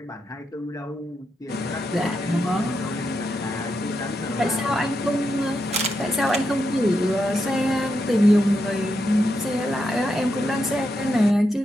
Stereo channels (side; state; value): both; normal; correlation 0.84